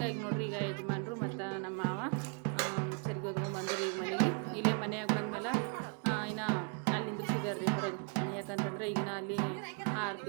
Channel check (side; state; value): left; quieter; 38.3 dB